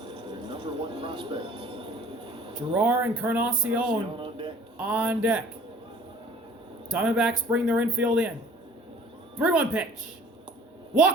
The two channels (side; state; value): both; normal; correlation 0.51